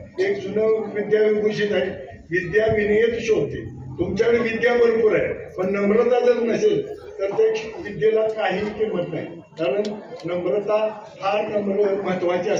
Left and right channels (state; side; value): identical; both; correlation 1.00